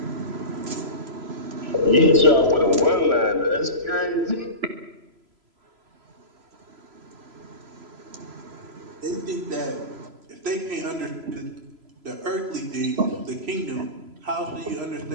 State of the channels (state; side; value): late; left; 3.0 ms